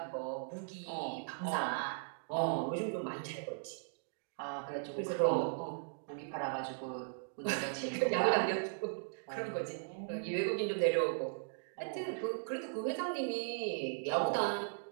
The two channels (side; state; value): left; silent; digital silence